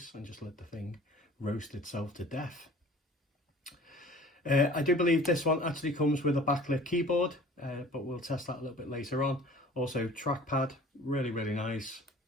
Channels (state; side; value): normal; both; correlation 0.46